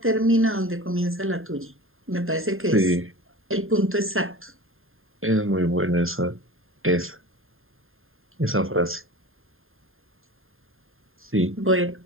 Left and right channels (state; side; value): late; left; 0.60 ms